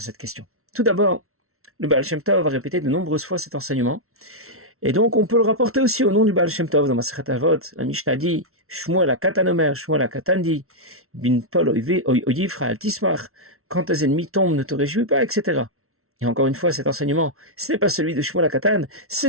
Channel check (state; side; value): late; left; 0.63 ms